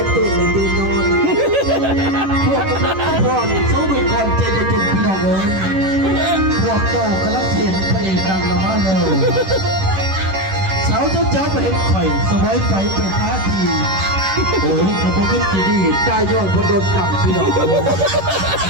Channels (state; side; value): late; left; 11 ms